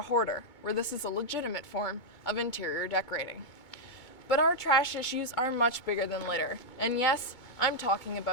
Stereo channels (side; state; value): right; late; 2.2 ms